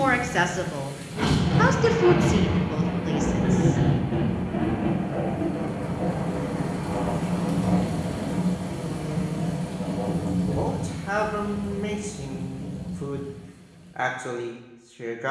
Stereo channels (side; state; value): both; identical; correlation 1.00